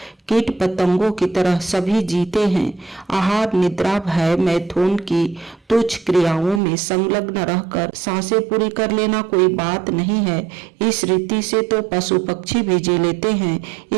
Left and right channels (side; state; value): left; drops out; at 6.6 s